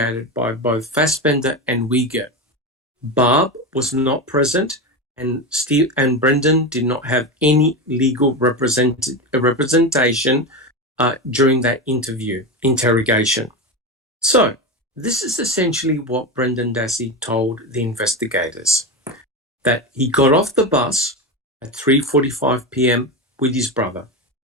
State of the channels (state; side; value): normal; both; correlation 0.18